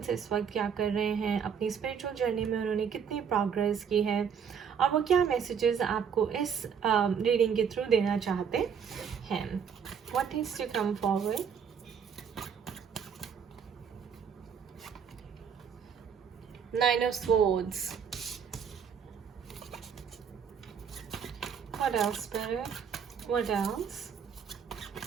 इस वक्त क्या कर रहे हैं, अपनी स्पिरिचुअल जर्नी में उन्होंने कितनी प्रोग्रेस की है और वो क्या मैसेजेस आपको इस रीडिंग के थ्रू देना चाहते हैं। What is to come forward? Nine of Swords. What else, Spirit? What else?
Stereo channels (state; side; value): quieter; left; 7.2 dB